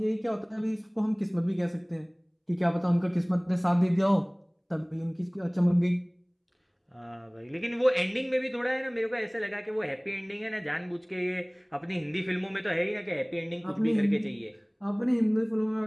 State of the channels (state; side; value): identical; both; correlation 1.00